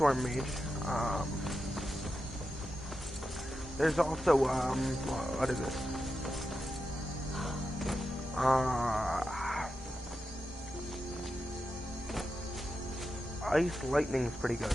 Mage. There's also, what is it? Ice Lightning's pretty good.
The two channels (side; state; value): both; normal; correlation 0.89